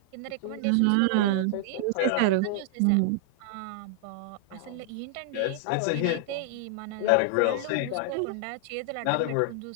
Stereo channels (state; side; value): different; both; correlation -0.01